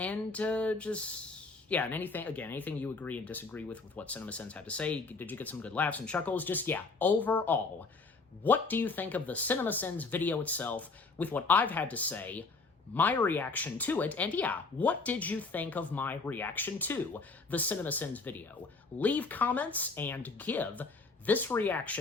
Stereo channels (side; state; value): right; quieter; 4.0 dB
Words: anything you agree and disagree with what CinemaSins had to say. Did you get some good laughs and chuckles? Overall, what do you think of the CinemaSins video itself with what I've had to say, my reaction to it, and what did you think of my reaction to the CinemaSins video? Leave comments and give this